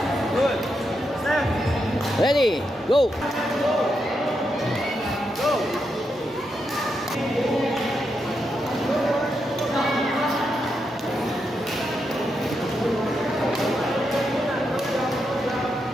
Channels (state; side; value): normal; both; correlation 0.83